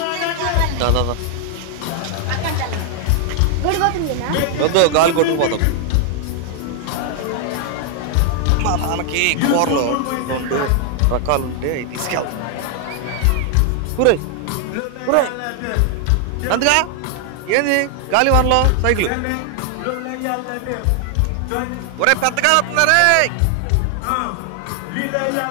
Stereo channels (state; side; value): different; both; correlation 0.00